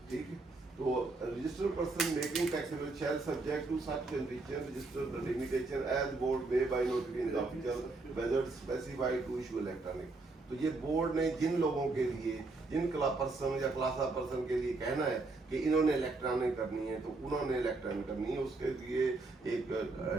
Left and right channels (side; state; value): left; quieter; 3.4 dB